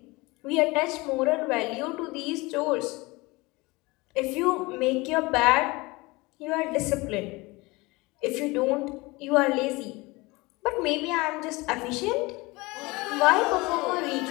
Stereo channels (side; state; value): right; quieter; 23.3 dB